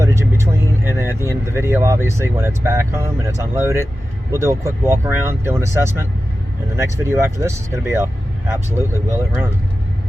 in between, and then at the end of the video, obviously when it's back home and it's unloaded, we'll do a quick walk around, do an assessment, and the next video after this is going to be a absolutely will it run.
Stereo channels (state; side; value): normal; both; correlation 0.93